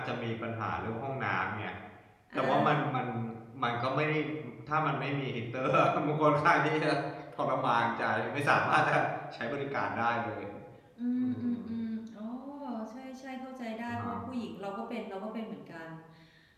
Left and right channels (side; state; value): both; identical; correlation 1.00